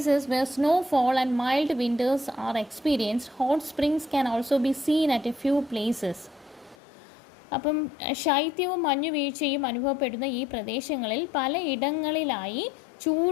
where snowfall and mild winters are experienced, hot springs can also be seen at a few places. അപ്പം ശൈത്യവും മഞ്ഞുവീഴ്ചയും അനുഭവപ്പെടുന്ന ഈ പ്രദേശങ്ങളിൽ പല ഇടങ്ങളിലായി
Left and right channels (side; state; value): right; drops out; at 6.8 s